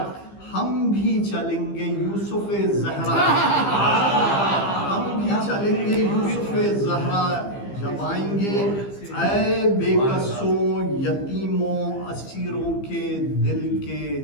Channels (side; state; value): right; late; 15 ms